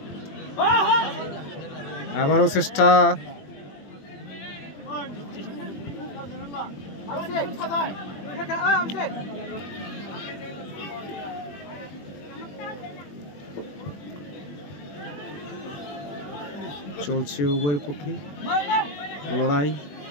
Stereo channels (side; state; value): right; late; 21 ms